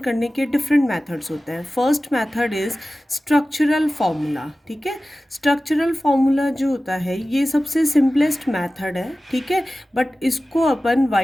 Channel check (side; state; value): both; normal; correlation 0.96